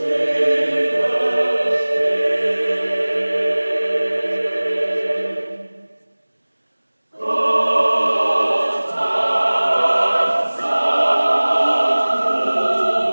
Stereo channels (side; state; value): both; inverted; correlation -1.00